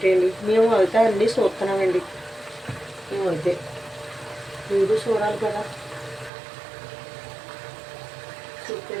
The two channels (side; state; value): left; drops out; at 6.3 s